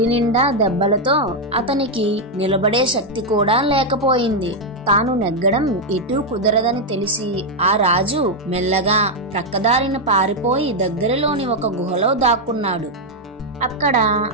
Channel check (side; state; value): both; normal; correlation 0.01